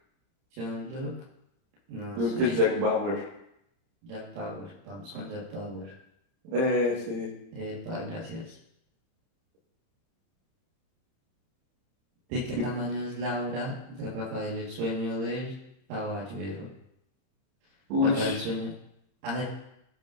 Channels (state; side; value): late; left; 31 ms